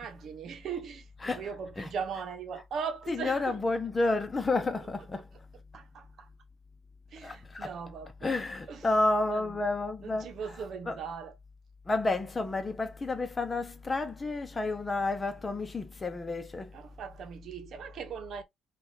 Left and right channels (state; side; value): normal; both; correlation 0.85